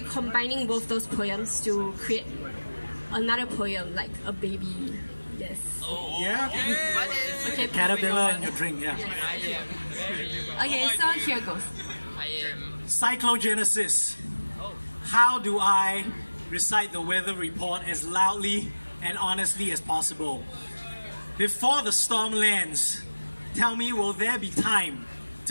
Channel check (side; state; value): both; inverted; correlation -1.00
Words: combining both those poems to create another poem, like a baby. Yes. Yeah? Okay. Caterpillar in your drink, yeah. Okay, so here goes. Cyclogenesis. How do I recite the weather report as loudly and honestly as possible? Before the storm lands, tell me, will there be time